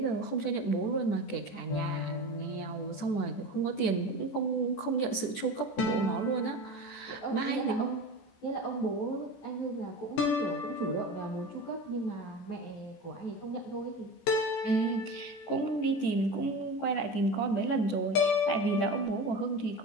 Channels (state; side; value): late; right; 14 ms